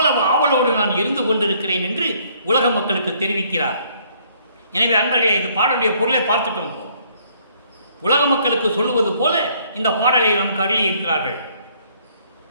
ஆவலோடு நான் இருந்து கொண்டிருக்கிறேன் என்று உலக மக்களுக்கு தெரிவிக்கிறார். எனவே அன்பர்களே, இந்த பாடலுடைய பொருளை பார்த்துட்டோம். உலக மக்களுக்கு சொல்லுவது போல இந்த பாடலை நமக்கு அருளி இருக்கிறார்கள்.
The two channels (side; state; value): both; inverted; correlation -0.64